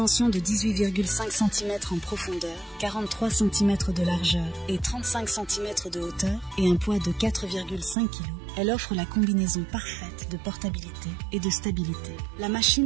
de 18,5 cm en profondeur, 43 cm de largeur et 35 cm de hauteur et un poids de 4,5 kg, elle offre la combinaison parfaite de portabilité et de stabilité. La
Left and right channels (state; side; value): drops out; left; at 8.0 s